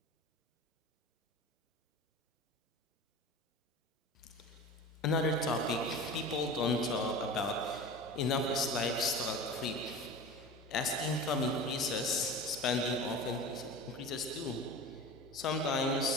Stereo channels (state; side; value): normal; both; correlation 0.34